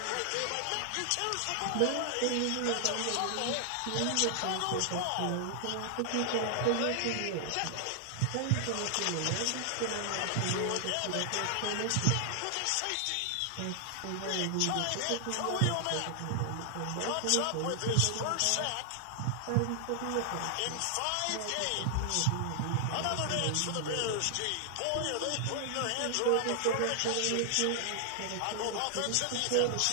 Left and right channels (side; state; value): both; different; correlation 0.00